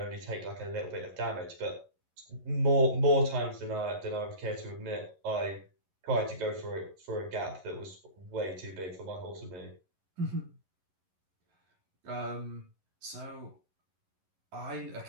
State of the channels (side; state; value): left; late; 11 ms